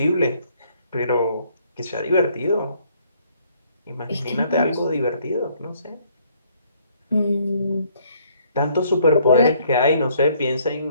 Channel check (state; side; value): inverted; both; correlation -0.65